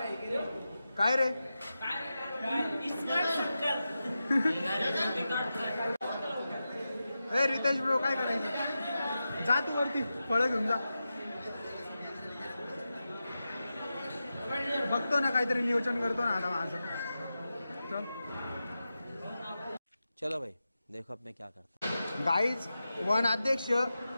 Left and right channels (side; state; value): both; inverted; correlation -0.92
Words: काय रे ए रितेश ब्रो काय करायचं जा तू वरती फळं घेऊन जा बघतो ना काहीतरी नियोजन करतो ना आता माझं चल चलो भाई देखो अब मैं क्या करता गाईज 1 अध्यक्ष